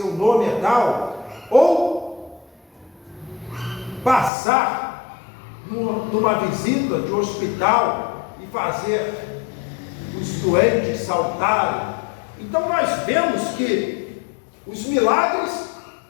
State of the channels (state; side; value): drops out; right; at 4.3 s